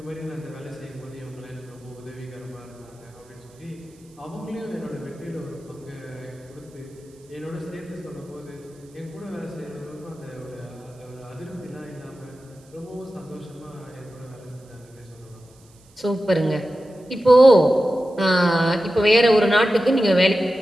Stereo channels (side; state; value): right; noise; hiss, 30 dB below the sound